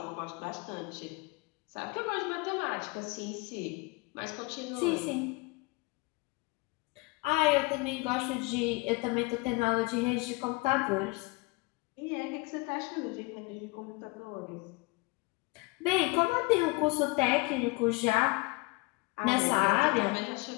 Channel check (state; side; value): quieter; right; 25.5 dB